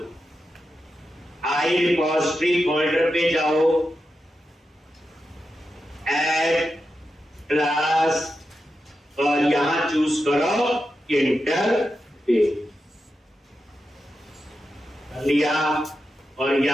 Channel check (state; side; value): normal; both; correlation 0.89